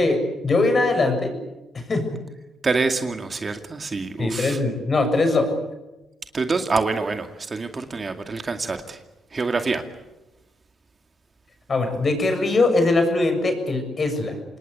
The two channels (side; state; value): both; normal; correlation 0.81